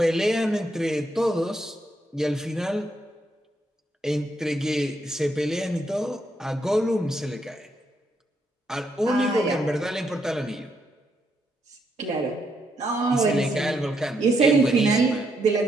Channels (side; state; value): both; normal; correlation 0.77